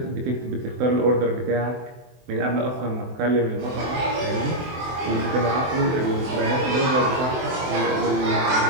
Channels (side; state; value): left; late; 23 ms